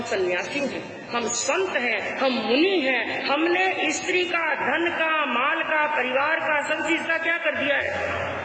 सन्यासी हैं, हम संत हैं, हम मुनि हैं, हमने स्त्री का, धन का, माल का, परिवार का, सब चीज का क्या कर दिया है,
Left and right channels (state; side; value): identical; both; correlation 1.00